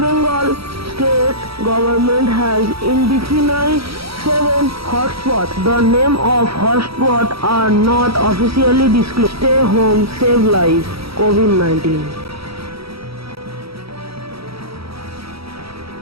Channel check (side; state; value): left; late; 0.76 ms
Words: state government has identified 7 hotspots. The name of hotspots are not officially disclosed. Stay home, save lives. COVID-19.